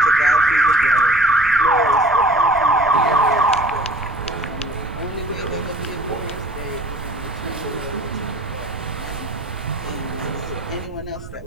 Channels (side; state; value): right; noise; rumble, 14 dB below the sound